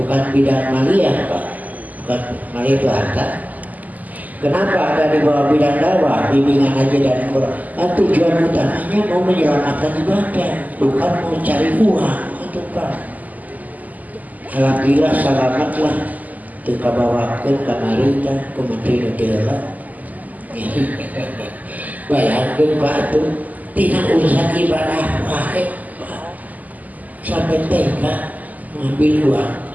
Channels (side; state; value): left; late; 0.079 ms